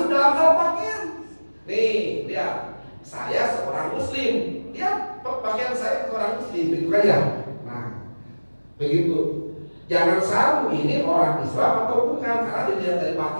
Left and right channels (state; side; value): inverted; both; correlation -1.00